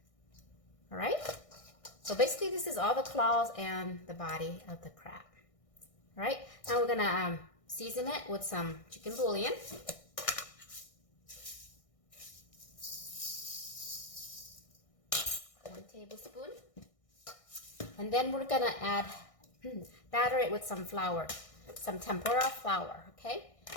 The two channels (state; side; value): late; right; 1.6 ms